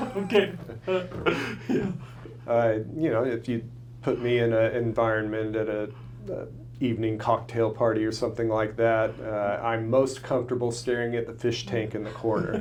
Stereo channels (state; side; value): identical; both; correlation 1.00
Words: Yeah. You know, if you put me in an environment at a evening cocktail party or something like that, I'm most comfortable staring at the fish tank in the